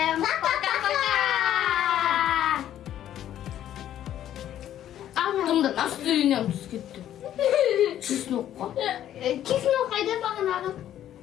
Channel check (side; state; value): right; quieter; 11.5 dB